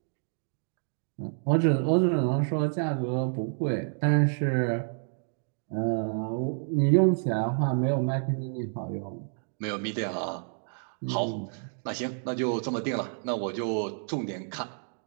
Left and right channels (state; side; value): silent; left; digital silence